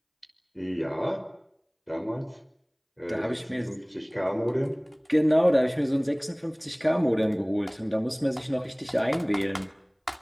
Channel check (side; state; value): both; identical; correlation 1.00